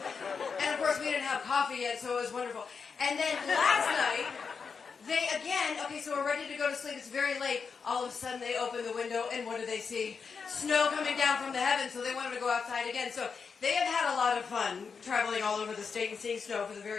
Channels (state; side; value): quieter; right; 5.6 dB